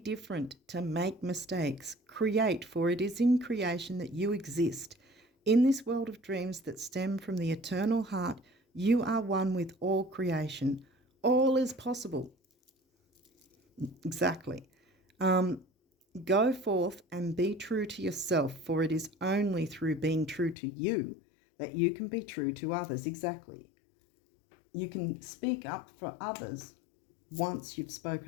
to make mistakes. Create, for it is in creation that you exist. In this world of dreams that stem from the eternal heart, you are one with all creation. All is possible. Exactly. Go forth and be true to yourself, for it is only through being true to you that you can be true to others. Exactly. You can speak up for others once you've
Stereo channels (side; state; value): right; drops out; at 20.6 s